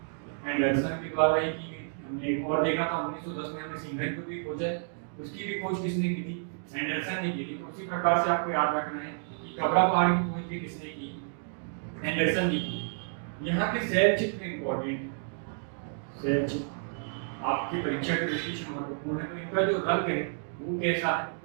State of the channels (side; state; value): left; silent; digital silence